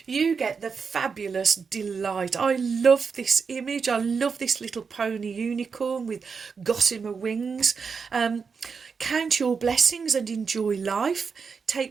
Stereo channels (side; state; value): left; quieter; 5.5 dB